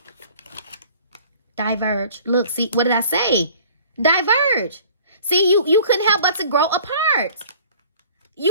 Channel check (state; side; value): inverted; both; correlation -0.49